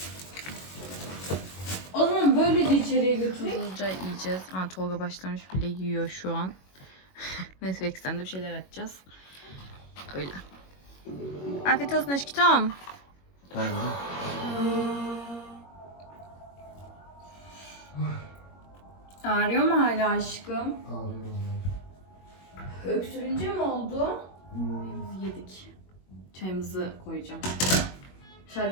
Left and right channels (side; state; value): right; late; 21 ms